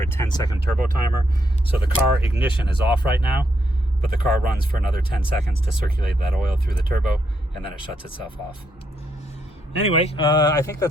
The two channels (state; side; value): normal; both; correlation 0.77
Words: a 10-second turbo timer. So the car ignition is off right now, but the car runs for another 10 seconds to circulate that oil through the turbo, and then it shuts itself off. Anyway, I think